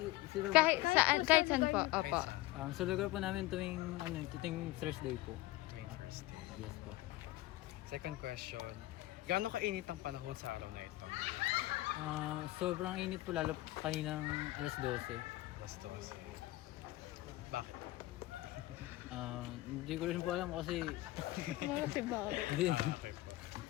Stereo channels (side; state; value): right; quieter; 18.0 dB